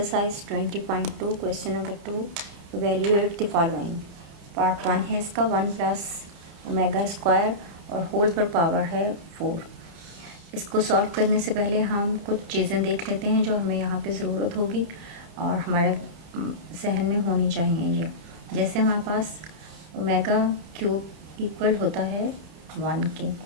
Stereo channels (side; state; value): left; late; 30 ms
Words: 20.2 question number 2 evaluate the following. Part 1 है इसका 1 plus omega square और whole पर पावर है 4। इसको सॉल्व करने से पहले हम कुछ चीज़ें देख लेते हैं जो हमें यहाँ पे ज़रूरत होगी और हमारे जहन में होनी चाहिए। ये जैसे हमारे पास ओमेगा क्यूब इक्वल होता है 1 के,